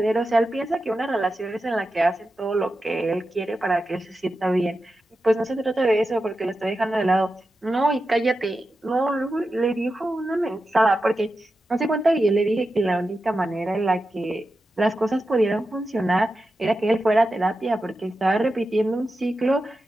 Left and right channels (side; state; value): both; normal; correlation 0.91